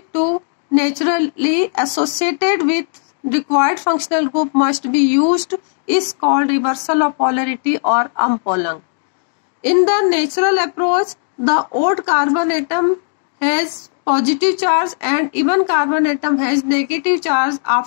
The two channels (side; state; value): right; silent; digital silence